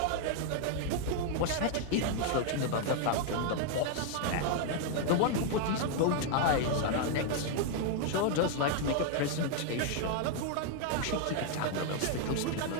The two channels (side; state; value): both; different; correlation 0.00